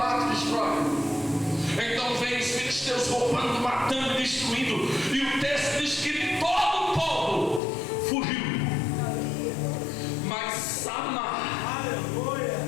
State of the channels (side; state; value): right; drops out; at 7.6 s